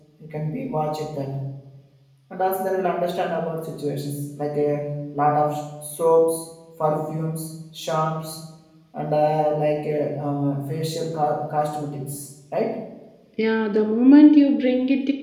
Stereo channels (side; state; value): both; identical; correlation 1.00